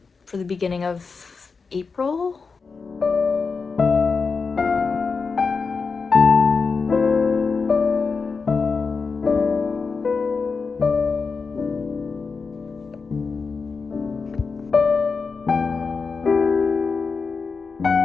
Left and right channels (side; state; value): right; quieter; 4.8 dB